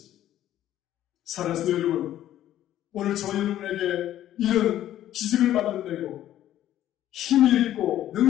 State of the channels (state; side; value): quieter; right; 12.4 dB